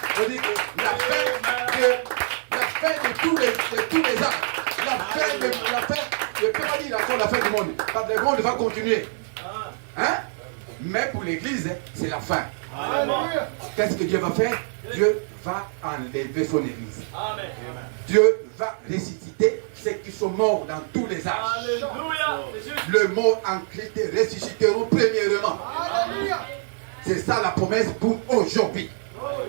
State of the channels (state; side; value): silent; left; 62 dB below the other